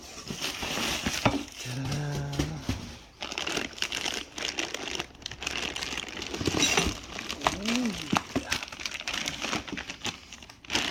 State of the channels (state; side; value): identical; both; correlation 1.00